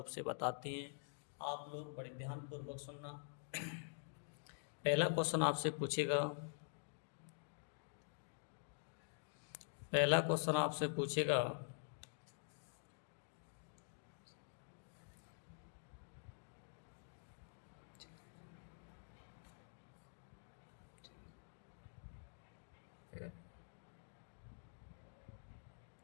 से बताते हैं। आप लोग बड़े ध्यानपूर्वक सुनना। पहला क्वेश्चन आपसे पूछेगा पहला क्वेश्चन आपसे पूछेगा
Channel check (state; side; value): silent; right; digital silence